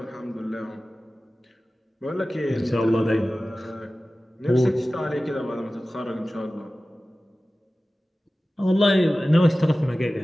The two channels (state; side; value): normal; both; correlation 0.96